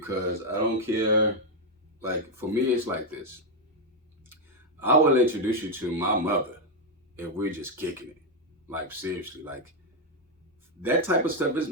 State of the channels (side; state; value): both; normal; correlation 0.02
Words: I don't care. Like for me, it's like this. I will introduce you to my mother if we're just kicking it. Like seriously, like that type of stuff is